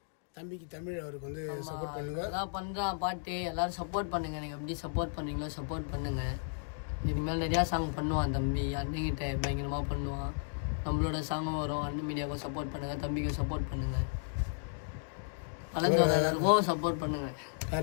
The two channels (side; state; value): right; silent; digital silence